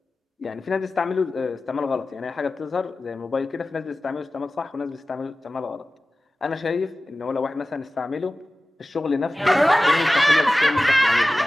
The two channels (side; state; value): both; normal; correlation 0.96